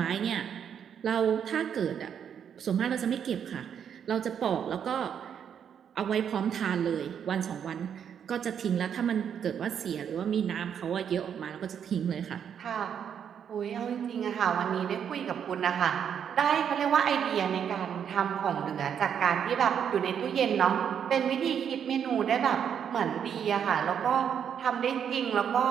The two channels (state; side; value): quieter; left; 8.2 dB